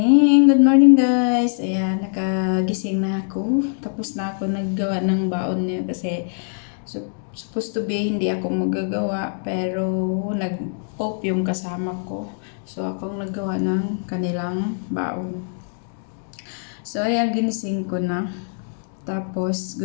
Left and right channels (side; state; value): right; silent; digital silence